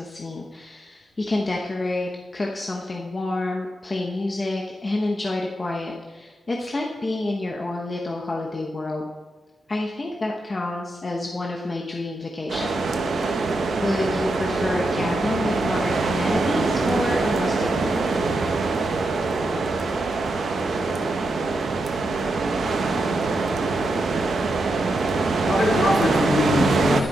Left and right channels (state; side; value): normal; both; correlation 0.85